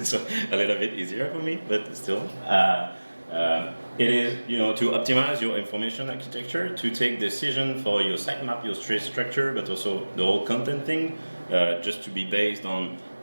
so a little bit easier for me, but still. It is, to optimize your information architecture, to take decision for your sitemap, your trace structure, but also the whole content thing, just to be based on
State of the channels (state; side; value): inverted; both; correlation -1.00